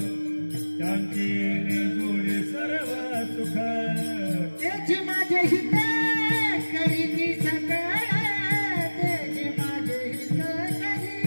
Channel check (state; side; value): inverted; both; correlation -1.00